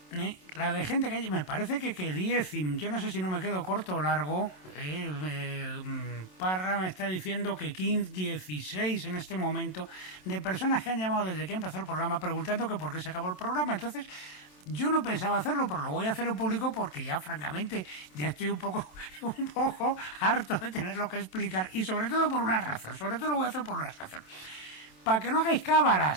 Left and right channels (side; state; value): right; late; 27 ms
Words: La de gente que me parece que 10, yo no sé si no me quedo corto o largo. Parra me está diciendo que 15, 16 en este momento de personas que han llamado desde que empezó el programa preguntando que por qué se acabó el programa. Entonces yo no pensaba hacerlo, pero lo voy a hacer en público porque ya francamente ya estoy un poco harto de tenerlo que explicar, y sobre todo por una razón. Sobre todo lo voy a hacer por una razón: para que no hagáis